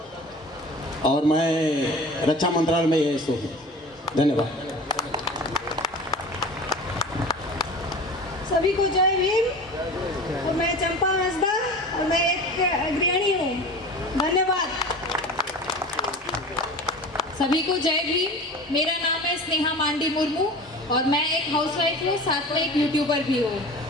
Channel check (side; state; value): both; normal; correlation 0.37